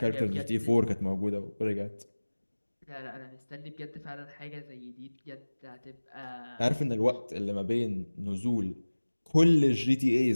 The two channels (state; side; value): inverted; both; correlation -1.00